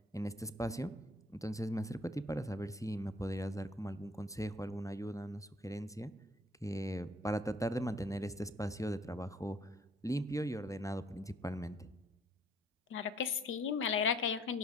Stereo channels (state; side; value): normal; both; correlation 0.59